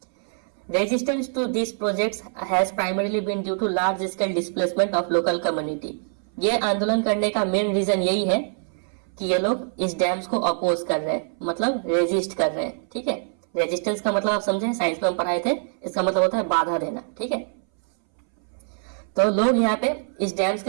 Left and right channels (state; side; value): silent; left; 62 dB below the other